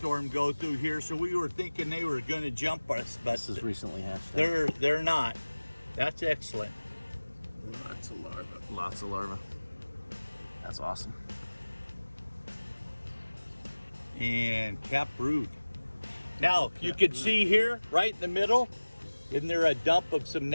go through here, so we were thinking they were going to jump us, but this is recently hatched out. they're not. That's excellent. Lots of larvae. Lots of larvae. That's awesome. And cap brood. Now, you can see here, right in the middle, isn't there a dump of some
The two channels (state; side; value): inverted; both; correlation -1.00